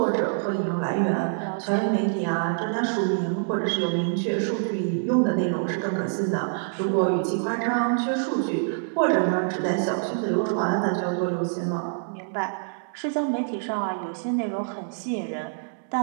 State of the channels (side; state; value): left; silent; digital silence